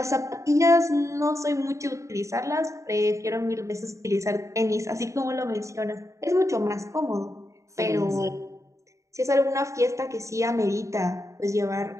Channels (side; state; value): left; late; 0.15 ms